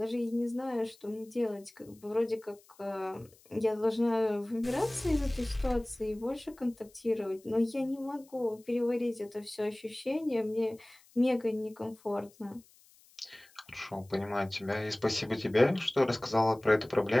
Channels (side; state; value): left; noise; hiss, 28 dB below the sound